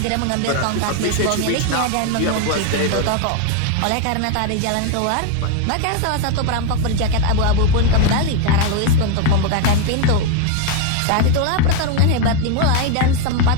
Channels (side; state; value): both; different; correlation 0.01